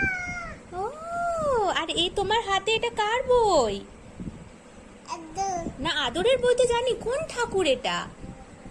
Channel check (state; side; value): identical; both; correlation 1.00